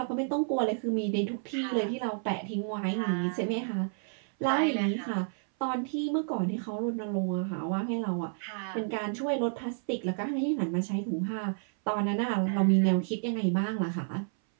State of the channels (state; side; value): silent; left; 58 dB below the other